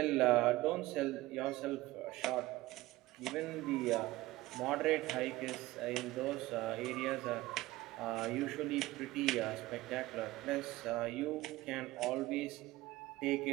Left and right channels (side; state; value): left; quieter; 18.3 dB